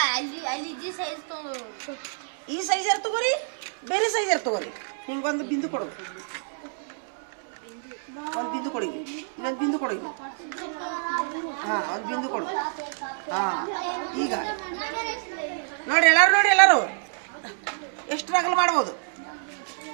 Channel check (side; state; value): left; silent; digital silence